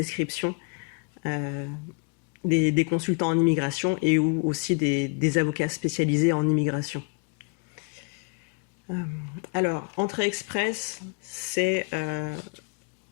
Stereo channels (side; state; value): right; quieter; 35.1 dB